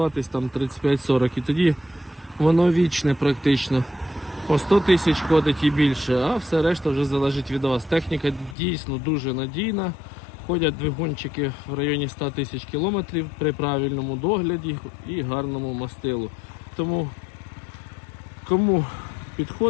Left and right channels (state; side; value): drops out; right; at 8.6 s